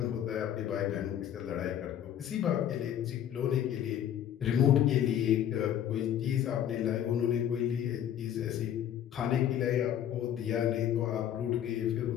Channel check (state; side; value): quieter; right; 10.3 dB